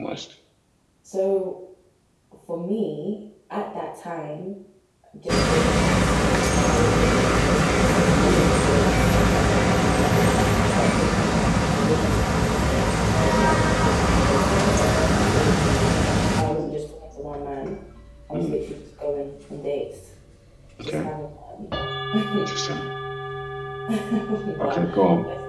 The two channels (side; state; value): both; identical; correlation 1.00